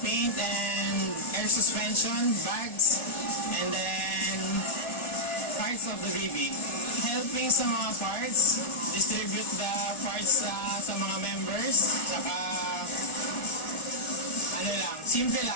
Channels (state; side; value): late; right; 1.4 ms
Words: paint and air suspension, bags, and then parts of the BB. Helping sa mga parts, distribute the parts sa mga members, saka ano lang, simple